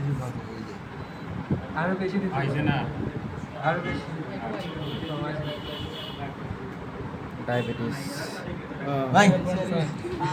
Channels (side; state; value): both; identical; correlation 1.00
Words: পাশে ওই যে আরো বেশি দিতে আইছে না, আরো বেশি। ডায়াবেটিস ভাই